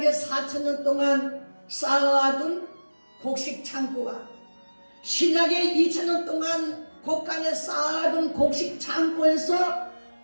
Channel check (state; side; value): inverted; both; correlation -1.00